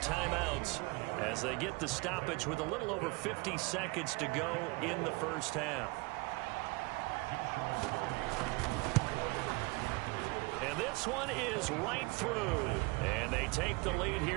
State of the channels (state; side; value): quieter; left; 26.2 dB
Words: as they get the stoppage with a little over 50 seconds to go in the first half. And this one is right through. And they take the lead